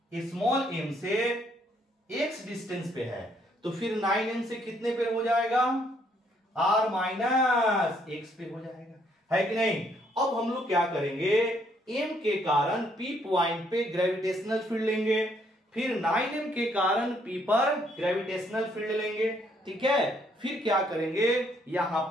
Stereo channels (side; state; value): both; normal; correlation 0.69